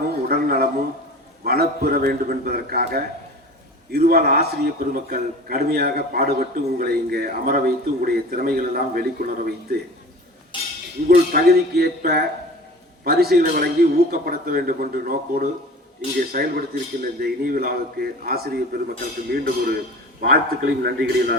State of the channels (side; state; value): both; normal; correlation 0.39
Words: உடல் நலமும் வளப்பெற வேண்டும் என்பதற்காக இருவாள் ஆசிரியர் பெருமக்கள் கடுமையாக பாடுபட்டு உங்களை இங்கே அமர வைத்து உங்களுடைய திறமைகள் எல்லாம் வெளிக்கொணர வைத்து உங்கள் தகுதிக்கு ஏற்ப பரிசுகளை வழங்கி ஊக்கப்படுத்த வேண்டும் என்ற நோக்கோடு இங்கே செயல்படுத்தியிருக்கின்ற இந்த இனிய விழாவுக்கு ஆசிரியர் பெருமக்களுக்கு மீண்டும் ஒரு வாழ்த்துக்களையும் நன்றிகளையும்